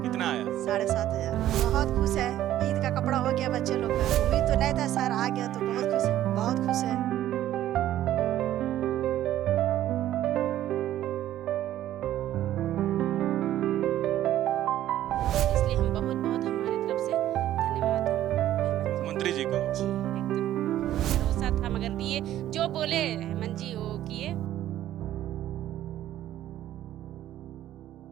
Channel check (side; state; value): left; quieter; 12.8 dB